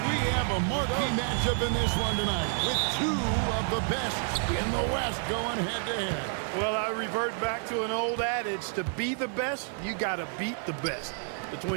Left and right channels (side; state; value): left; silent; 56 dB below the other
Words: have a marquee matchup in this one tonight with two of the best in the West going head-to-head? Well, I revert back to an old adage, to be the best, you got to beat the best.